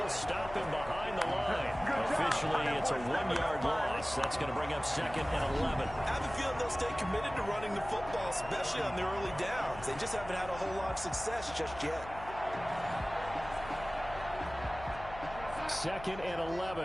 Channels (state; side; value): noise; left; hum, 14 dB below the sound